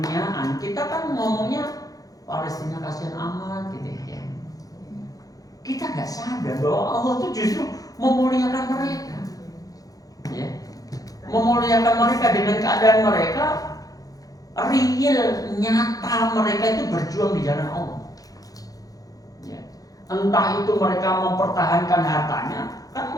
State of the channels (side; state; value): right; late; 0.17 ms